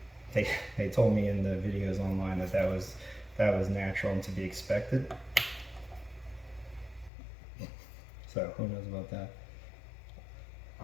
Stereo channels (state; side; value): drops out; right; at 7.1 s